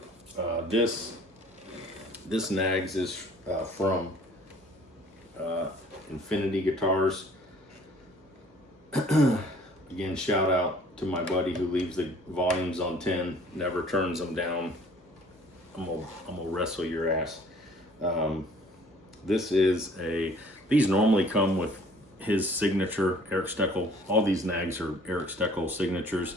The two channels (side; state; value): both; normal; correlation 0.54